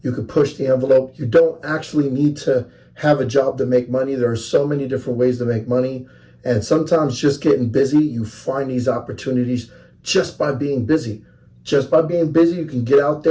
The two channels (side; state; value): both; identical; correlation 1.00